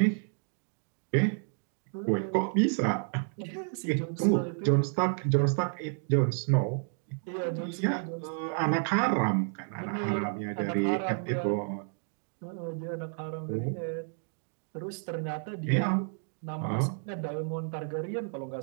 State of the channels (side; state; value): left; silent; 57 dB below the other